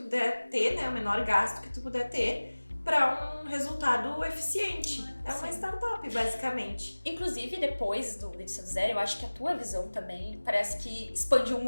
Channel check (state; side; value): inverted; both; correlation -1.00